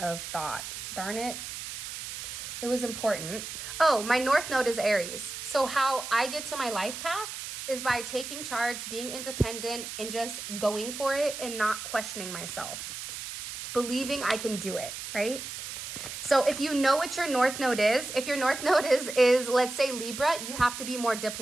thought. Darn it. It was important. Oh, my north node is Aries. So how I get to my life path is by taking charge, being independent, and just going for it and not questioning myself. It's believing I can do it, right? So if you know what your north node is, if your north node is let's say Libra, you have to be more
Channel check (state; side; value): noise; right; hiss, 8 dB below the sound